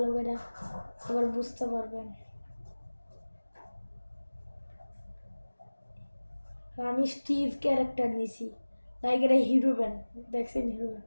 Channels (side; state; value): both; inverted; correlation -1.00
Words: করে, আবার বুঝতে পারবেন। আমি স্টিভ ক্যারেক্টার নিছি, লাইক এটা হিরো ব্যান্ড, দেখছেন হিরো